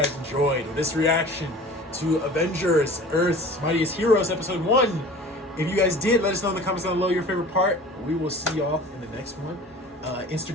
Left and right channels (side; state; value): both; normal; correlation 0.42